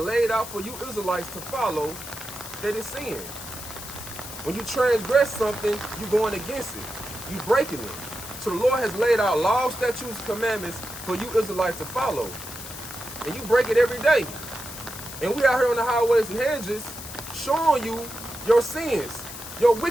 out for you Israelites to follow, that is sin. When you transgress something, you're going against it. You're breaking it. So the Lord has laid out laws, statutes, commandments for you Israelites to follow. And you break it every day. And we out here on the highways and hedges showing you your sins, your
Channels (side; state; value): left; noise; hiss, 11 dB below the sound